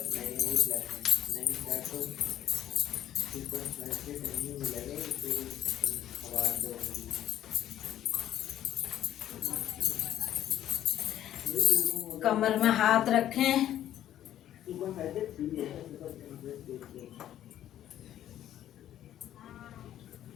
कमर में हाथ रखें।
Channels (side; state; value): right; quieter; 11.8 dB